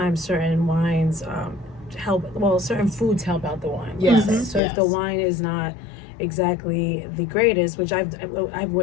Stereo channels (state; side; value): drops out; right; at 4.6 s